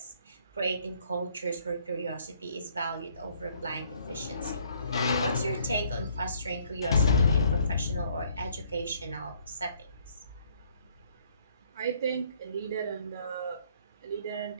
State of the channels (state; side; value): inverted; both; correlation -0.64